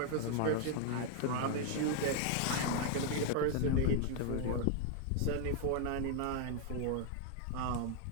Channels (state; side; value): different; both; correlation 0.00